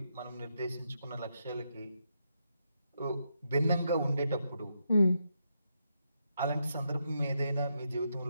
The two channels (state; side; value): inverted; both; correlation -0.81